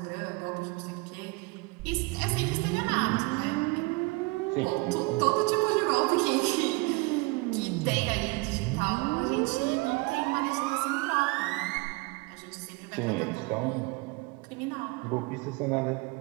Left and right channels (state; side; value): quieter; left; 25.8 dB